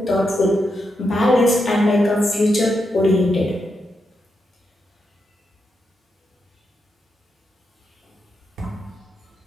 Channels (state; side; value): normal; both; correlation 0.84